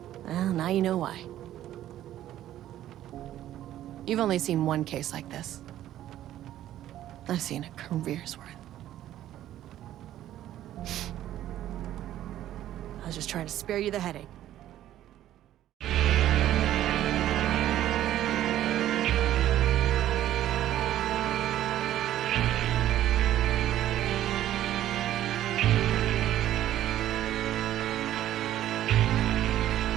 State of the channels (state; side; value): quieter; left; 12.7 dB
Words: Well, now you know why. You've only seen one case like this. I've seen a career's worth. I was just trying to spare you the headache.